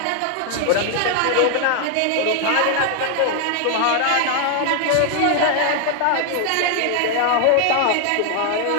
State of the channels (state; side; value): different; both; correlation 0.00